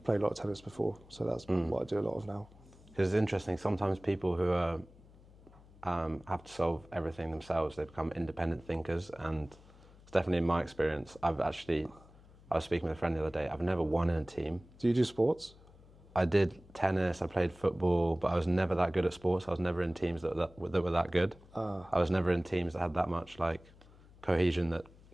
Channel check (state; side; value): noise; left; hum, 24 dB below the sound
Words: played a lot of tennis before, so that's what I do a lot of now. Because it's interesting, sometimes people who are, have to solve everything themselves, they become independent thinkers, and it's definitely in my experience. I was speaking with a friend the other day, I've never won in a team. Do you do sports? I did tennis, I played football, but I was never that good at sports. I was never in teams that were that good. I was never in teams that had that much like cohesion, that